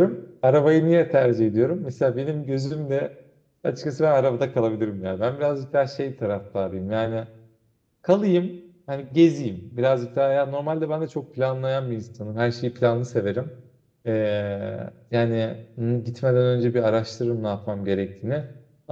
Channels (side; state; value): both; identical; correlation 1.00